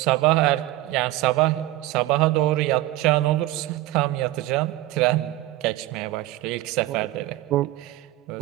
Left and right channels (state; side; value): quieter; left; 16.5 dB